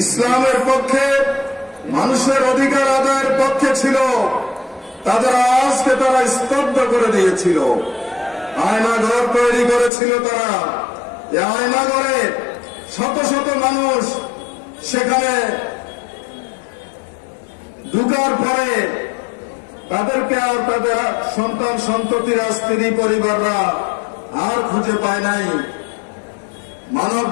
ইসলামের পক্ষে, মানুষের অধিকার আদায়ের পক্ষে ছিল, তাদের আজকে তারা স্তব্ধ করে দিয়েছিল। আয়নাঘর তৈরি করেছিল তারা। এই আয়নাঘরে শত শত মানুষ সেখানে ঢুকার পরে তাদেরকে আর তাদের সন্তান সন্ততিরা, স্ত্রী পরিবাররা আর খুঁজে পায় নাই। মানব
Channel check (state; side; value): drops out; right; at 9.9 s